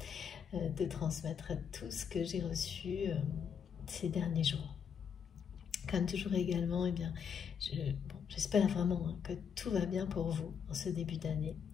de transmettre tout ce que j'ai reçu ces derniers jours. Comme toujours également, j'espère vraiment que tout va bien pour vous en ce début d'année.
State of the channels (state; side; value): quieter; right; 7.3 dB